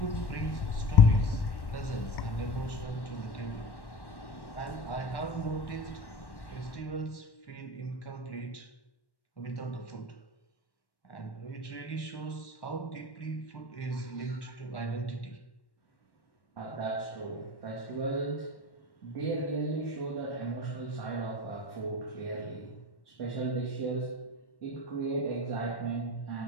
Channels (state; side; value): late; right; 1.1 ms